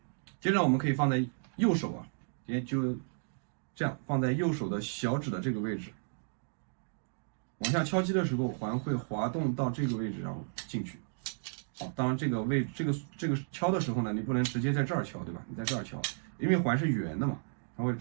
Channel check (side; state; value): left; silent; digital silence